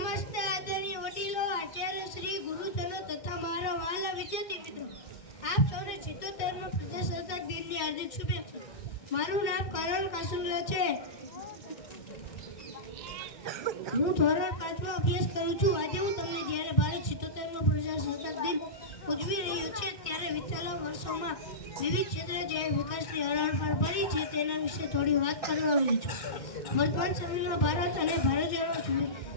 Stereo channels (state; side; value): late; right; 2.1 ms